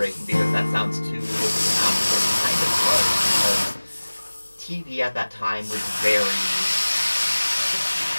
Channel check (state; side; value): inverted; both; correlation -1.00